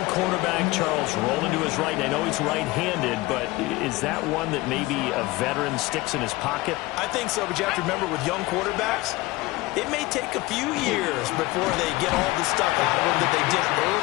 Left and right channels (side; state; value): right; quieter; 20.2 dB